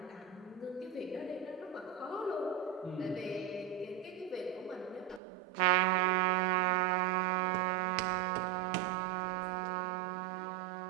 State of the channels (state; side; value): drops out; left; at 5.2 s